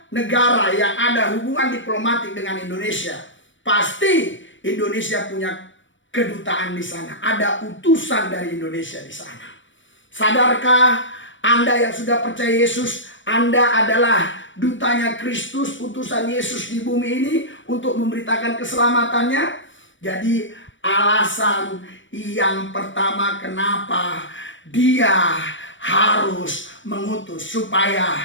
negara yang ada hubungan diplomatik dengan Indonesia, pasti Indonesia punya kedutaan di sana. Ada utusan dari Indonesia di sana. Sadarkah Anda yang sudah percaya Yesus, Anda adalah dutanya Kristus, utusan Yesus di bumi ini untuk memberitakan keselamatannya? Jadi alasan yang pertama kenapa dia harus mengutus,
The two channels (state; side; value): late; right; 0.56 ms